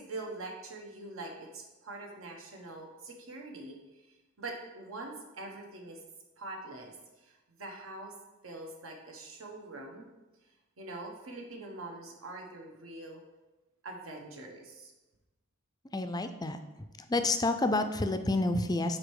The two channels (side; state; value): both; normal; correlation 0.52